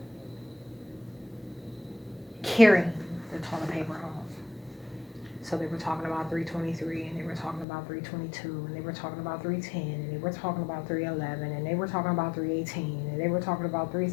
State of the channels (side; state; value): right; drops out; at 7.7 s